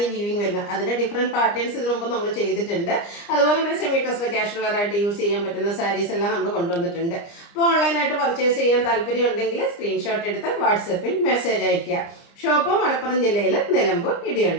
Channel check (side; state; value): right; late; 29 ms